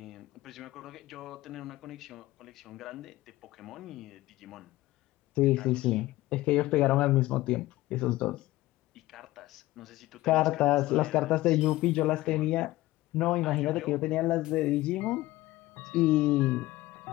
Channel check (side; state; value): right; quieter; 17.5 dB